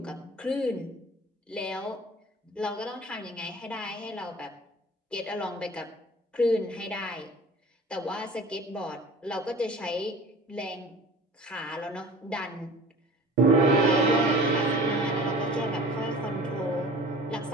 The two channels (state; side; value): normal; both; correlation 0.43